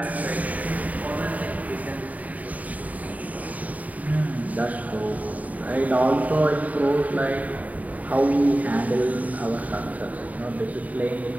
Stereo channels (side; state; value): left; late; 0.073 ms